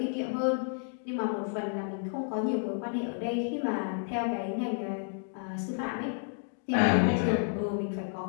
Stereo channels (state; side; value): silent; right; 57 dB below the other